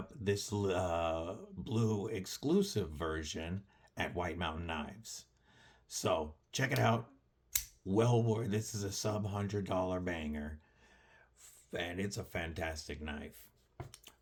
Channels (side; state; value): both; identical; correlation 1.00